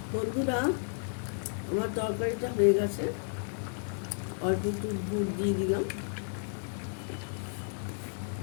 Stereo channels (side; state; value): right; silent; digital silence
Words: বন্ধুরা, আমার তরকারিটা হয়ে গেছে। অল্প একটু দুধ দিয়ে দিলাম,